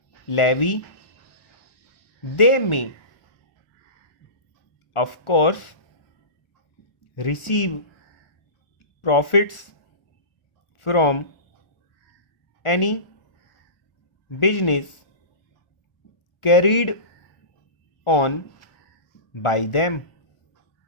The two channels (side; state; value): right; late; 1.4 ms